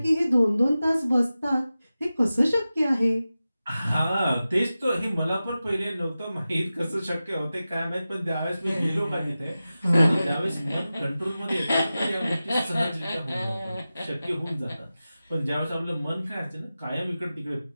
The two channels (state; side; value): inverted; both; correlation -0.95